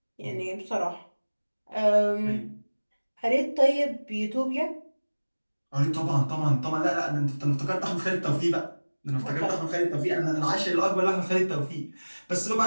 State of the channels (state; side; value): inverted; both; correlation -1.00